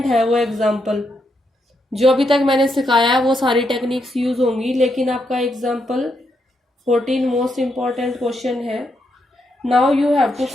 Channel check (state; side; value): normal; both; correlation 0.80